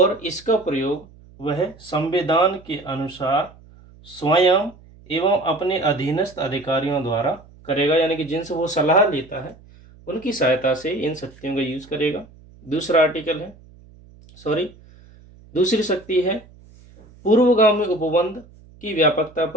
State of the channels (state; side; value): noise; right; hum, 24 dB below the sound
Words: इसका प्रयोग वह संविधान के अनुसार स्वयं एवं अपने अधीनस्थ अधिकारियों द्वारा करेगा, यानी कि जिनसे वो सलाह लेता है उनकी सहायता से इन शक्तियों का यूज करेगा। दूसरी शक्ति है पूर्वगामी उपबंध की व्यापकता